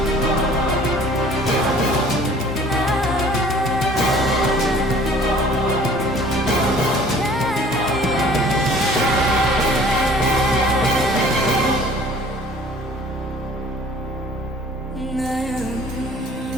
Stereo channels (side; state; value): both; normal; correlation 0.51